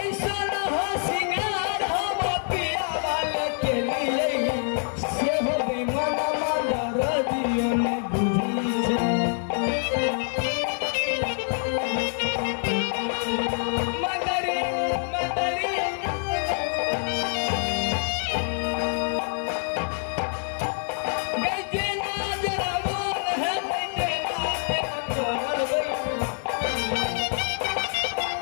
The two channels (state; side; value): silent; right; 61 dB below the other